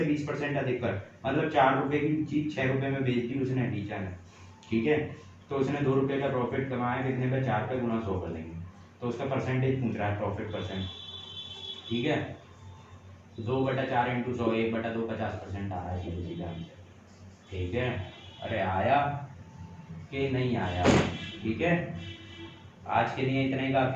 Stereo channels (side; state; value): both; identical; correlation 1.00